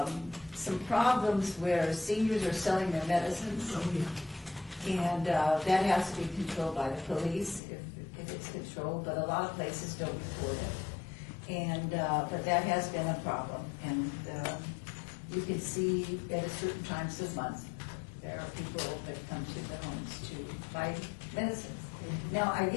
some problems where seniors are selling their medicines. And that has to be controlled by the police if it's controlled, but a lot of places don't report it. And, but that has been a problem. And you can see at certain times of month, there are people that come to the homes to buy medicines. Now, I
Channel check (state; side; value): drops out; right; at 7.6 s